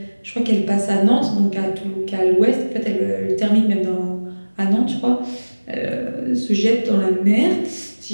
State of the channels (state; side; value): inverted; both; correlation -1.00